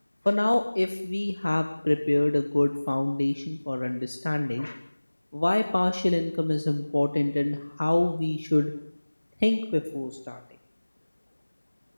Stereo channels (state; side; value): inverted; both; correlation -1.00